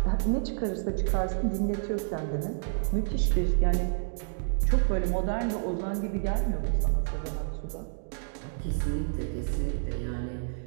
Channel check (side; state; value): left; silent; digital silence